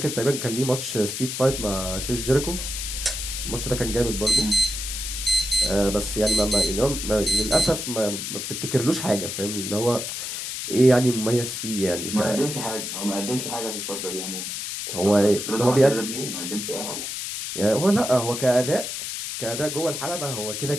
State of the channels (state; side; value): noise; left; hiss, 5 dB below the sound